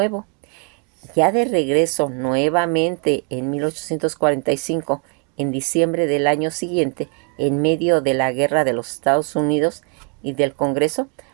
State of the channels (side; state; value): left; quieter; 36.4 dB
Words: Ya de regreso nuevamente en 1845, en diciembre del año siguiente, en medio de la guerra de los Estados Unidos y del Congreso,